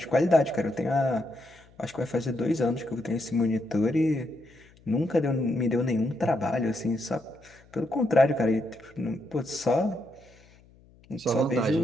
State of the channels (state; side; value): noise; left; hum, 27 dB below the sound